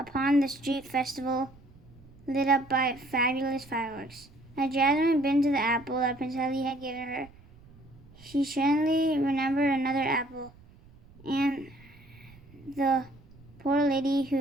the street festival lit up by fabulous fireworks. As Jasmine bit into the apple that Prince Ali had given her, she suddenly remembered another apple and the poor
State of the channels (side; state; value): right; noise; rumble, 24 dB below the sound